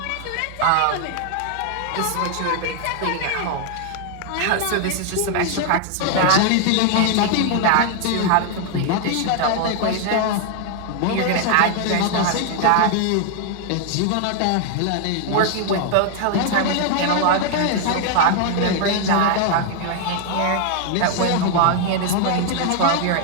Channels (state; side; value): different; both; correlation 0.00